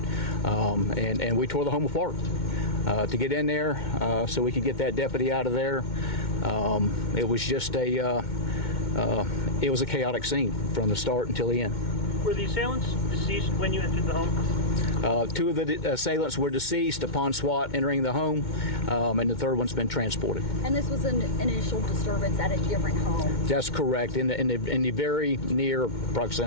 And we tore the home apart to get in there so we could get that deputy out of there. It was just it was a chaotic scene from the start until the end. Were the assailants deceased when you entered the home? Two of the assailants were deceased upon SWAT entering the home, and the third one's been transported. And this was an initial disturbance at a different home? That's correct, in the very near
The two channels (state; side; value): late; right; 2.2 ms